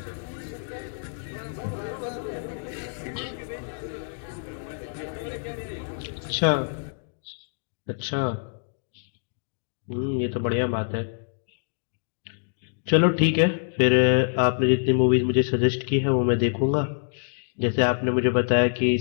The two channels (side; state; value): right; silent; digital silence